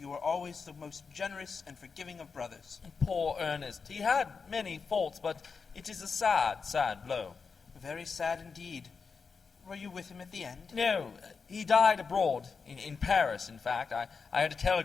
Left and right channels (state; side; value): quieter; right; 5.2 dB